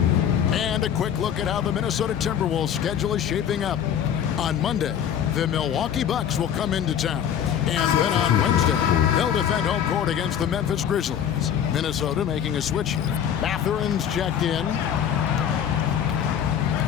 And a quick look at how the Minnesota Timberwolves schedule is shaping up. On Monday, the Milwaukee Bucks will come into town. And then on Wednesday, they'll defend home court against the Memphis Grizzlies. Minnesota making a switch here. Mathurin's checked in.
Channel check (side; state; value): right; quieter; 9.0 dB